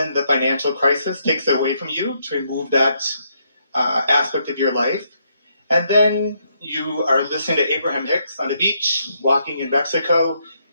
the financial crisis takes it away from you to remove that aspect of your life. And then you are listening to Abraham Hicks on the beach, walking in Mexico,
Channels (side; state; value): both; inverted; correlation -0.75